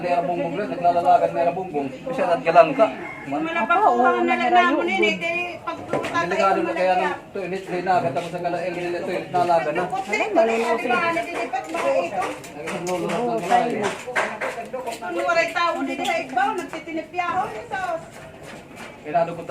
yung bumbong rin? Naglalalaga na yung bumbong. Kasi naggalang ka. Delikado na kaya ng toilet rin na. Katapos ang kalail nila toilet nalaga na. Naglalalaga na layo. Pinado ko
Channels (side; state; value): both; identical; correlation 1.00